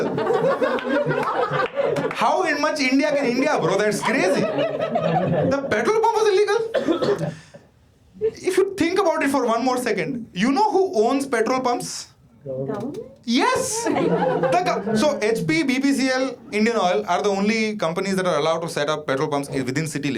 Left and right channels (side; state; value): both; identical; correlation 1.00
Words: How in much India can India, bro? That's crazy. The petrol pump was illegal. If you think about it for one more second, you know who owns petrol pumps? Government? Yes! So HP, BPCL, Indian Oil are the only companies that are allowed to set up petrol pumps within city